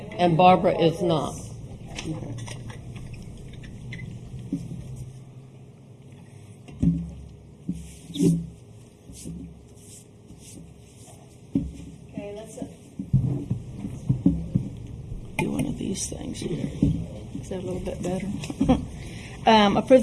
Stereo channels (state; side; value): identical; both; correlation 1.00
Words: And Barbara is not. Okay, let's, Do one of these things here. is that a little bit better? Approve